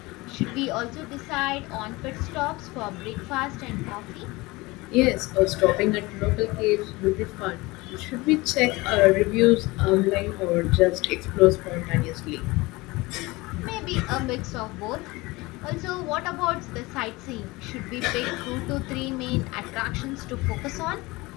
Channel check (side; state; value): right; quieter; 22.2 dB